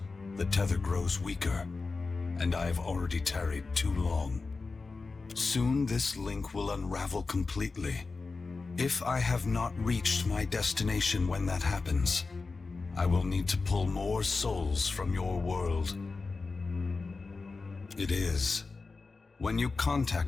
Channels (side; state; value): right; quieter; 4.0 dB